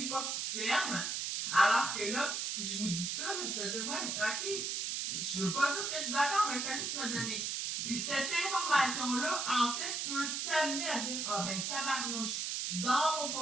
pas que tu te fermes. Alors que là, je vous dis ça, mais tu vas dire, ouais, ok, je veux pas dire que je suis d'accord, mais fais juste me donner. Puis cette information-là, en fait, peut t'amener à dire, ah ben tabarnouche, dans mon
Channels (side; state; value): right; noise; hiss, 1 dB below the sound